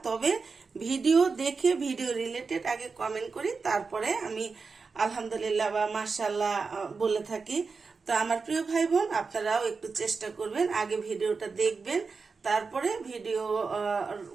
তবে ভিডিও দেখে ভিডিও রিলেটেড আগে কমেন্ট করি, তারপরে আমি আলহামদুলিল্লাহ বা মাশাআল্লাহ বলে থাকি। তো আমার প্রিয় ভাই বোন, আপনারাও একটু চেষ্টা করবেন, আগে ভিডিওটা দেখবেন, তারপরে ভিডিও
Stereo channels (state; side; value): quieter; left; 4.7 dB